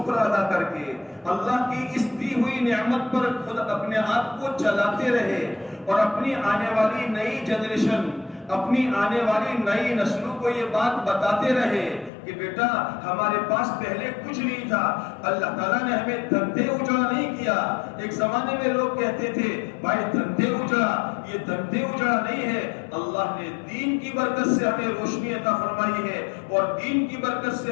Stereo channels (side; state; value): right; drops out; at 12.1 s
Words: ادا کر کے اللہ کی اس دی ہوئی نعمت پر خود اپنے آپ کو چلاتے رہے، اور اپنی آنے والی نئی جنریشن، اپنی آنے والی نئی نسلوں کو یہ بات بتاتے رہے کہ بیٹا ہمارے پاس پہلے کچھ نہیں تھا، اللہ تعالیٰ نے ہمیں دھندے اجڑا نہیں کیا۔ ایک زمانے میں لوگ کہتے تھے بھائی دھندے اجڑا، یہ دھندے اجڑا نہیں ہے، اللہ نے دین کی برکت سے ہمیں روشنی عطا فرمائی ہے، اور دین کی برکت سے